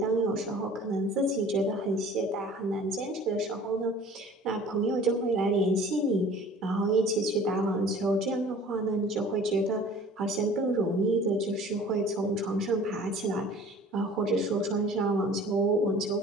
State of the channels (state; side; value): normal; both; correlation 0.47